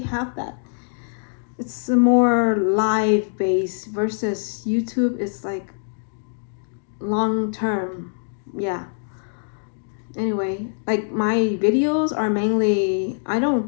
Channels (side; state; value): right; silent; digital silence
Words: have that. It's a more live based versus YouTube. It's like long term. Yeah. Anyway, like my videos are mainly, I